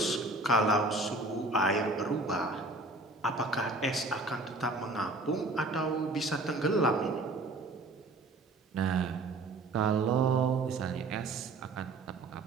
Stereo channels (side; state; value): left; quieter; 3.0 dB